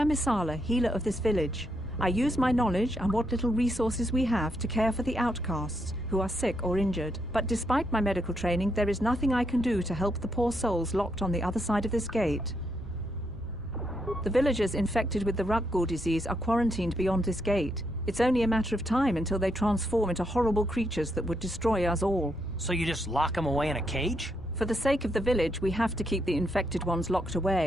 Isala, healer of this village. I use my knowledge and what little resources we have to care for the outcasts who are sick or injured. But despite my medical training, there is nothing I can do to help the poor souls locked on the other side of this gate. The villagers infected with the Rukgul disease are quarantined beyond this gate. It's only a matter of time until they transform into horrible creatures that would destroy us all. So you just lock them away in a cage? For the sake of the village, we have to keep the infected ones locked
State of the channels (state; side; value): normal; both; correlation 0.79